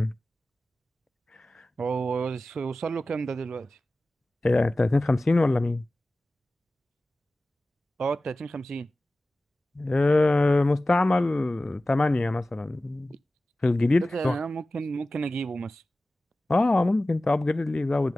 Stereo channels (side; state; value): both; normal; correlation 0.96